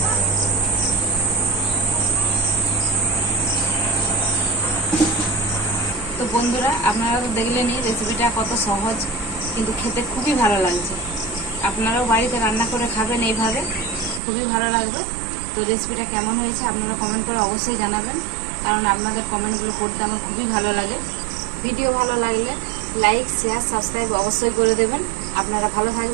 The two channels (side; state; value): left; drops out; at 14.2 s